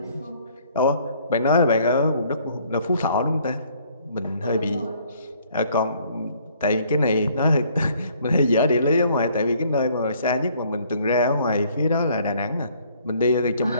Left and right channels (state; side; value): inverted; both; correlation -0.61